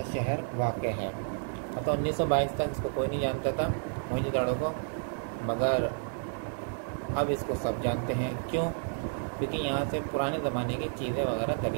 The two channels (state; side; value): silent; left; 57 dB below the other